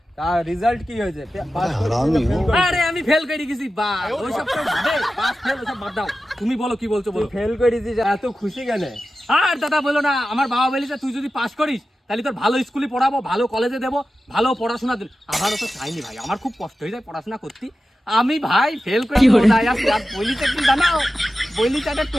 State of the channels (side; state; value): both; normal; correlation 0.93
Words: তার রেজাল্ট কি হয়েছে? আরে আমি ফেল করে গেছি বা ওইসব তো বাদে, পাস ফেল ওসব বাদ দাও। তুমি বলো কি বলছো বলো। ফেল করেছিস, এত খুশি কেন? আর দাদা বলো না, আমার বাবা বলেছে তুই যদি পাস করিস তাহলে তোর ভালো স্কুলে পড়াবো, ভালো কলেজে দেবো, ভালো পড়াশোনা দেবো। আমারও তো চাইনি ভাই, আমার খুব কষ্ট হয়ে যায় পড়াশোনা করতে। আমি ভাই ফেল করে বলিতে কি জানাও, বলিতে একটা